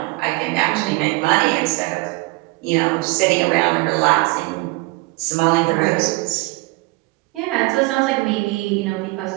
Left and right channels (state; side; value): quieter; left; 24.0 dB